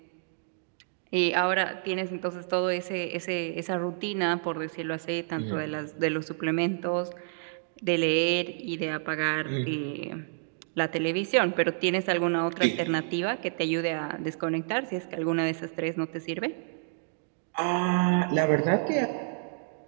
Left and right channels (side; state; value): left; silent; digital silence